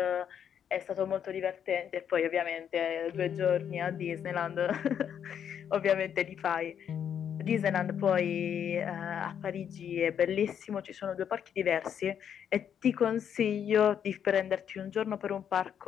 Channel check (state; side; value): quieter; right; 8.6 dB